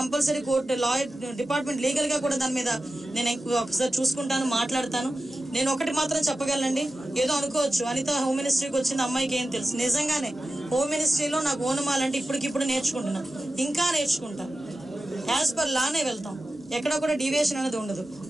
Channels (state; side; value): normal; both; correlation 0.94